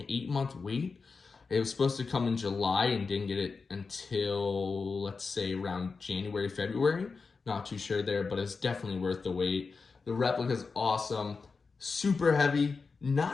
wait. It was supposed to come in July and didn't get it until, let's say, around January, February. Not too sure there, but it's definitely worth the wait. The replica's awesome, super heavy,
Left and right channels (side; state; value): right; quieter; 4.6 dB